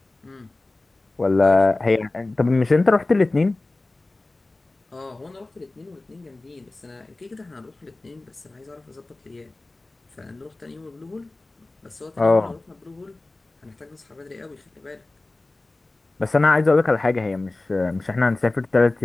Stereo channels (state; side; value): quieter; right; 3.0 dB